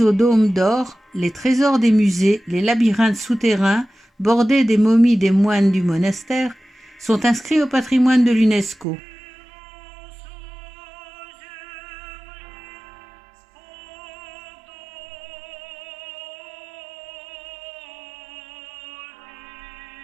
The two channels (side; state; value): left; drops out; at 8.8 s